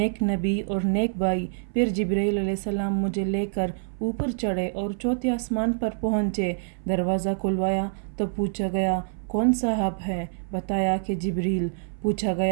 नबी और नेक भाई। फिर जिब्राइल अलैहिस्सलाम मुझे लेकर ऊपर चढ़े और चौथे आसमान पर पहुँचे। दरवाज़ा खुलवाया तो पूछा गया कौन साहब है? बताया कि जिब्रील। पूछा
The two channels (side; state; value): left; silent; 57 dB below the other